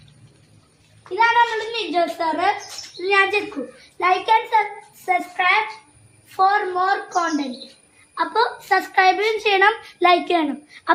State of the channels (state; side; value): identical; both; correlation 1.00